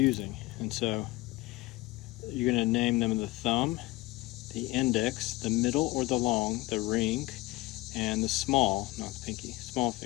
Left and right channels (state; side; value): quieter; right; 20.1 dB